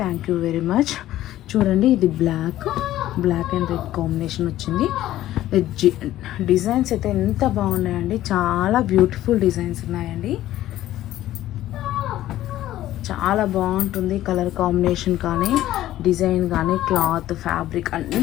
థ్యాంక్ యూ వెరీ మచ్. చూడండి, ఇది బ్లాక్ అండ్ రెడ్ కాంబినేషన్ వచ్చింది. డిజైన్స్ అయితే ఎంత బాగున్నాయండి, చాలా బ్యూటిఫుల్ డిజైన్స్ ఉన్నాయండి. చాలా బాగుంటుంది కలర్ కాంబినేషన్ కానీ, డిజైన్ కానీ, క్లాత్, ఫ్యాబ్రిక్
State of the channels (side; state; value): right; quieter; 14.0 dB